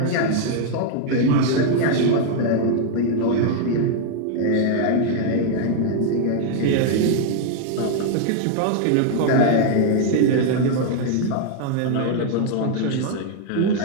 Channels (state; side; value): different; both; correlation 0.00